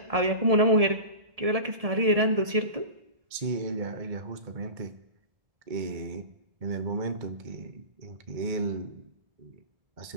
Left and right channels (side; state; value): left; late; 1.7 ms